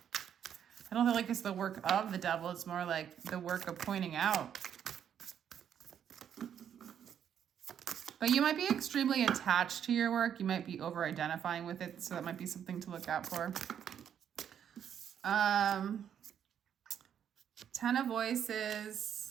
I don't feel like it's the work of the devil. It's more like the work of pointing out. But you might be extremely attached to your work. You might be over-identifying with it, so that might be something to look out for. 10 of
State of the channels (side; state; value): left; quieter; 9.0 dB